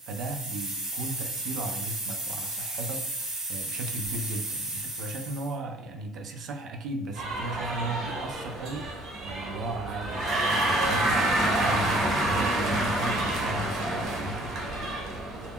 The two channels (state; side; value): normal; both; correlation 0.54